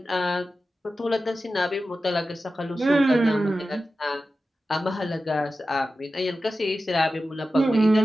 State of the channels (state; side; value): normal; both; correlation 0.93